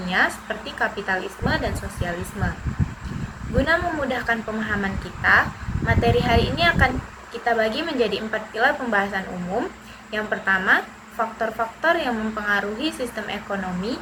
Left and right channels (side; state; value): both; identical; correlation 1.00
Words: seperti kapitalisme dan sosialisme. Guna memudahkan pemahaman kita, materi hari ini akan kita bagi menjadi 4 pilar pembahasan umum. Yang pertama, faktor-faktor yang mempengaruhi sistem ekonomi.